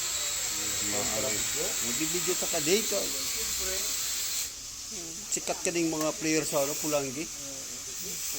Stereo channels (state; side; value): identical; both; correlation 1.00